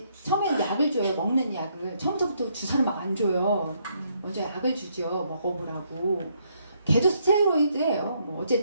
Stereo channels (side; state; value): both; inverted; correlation -0.72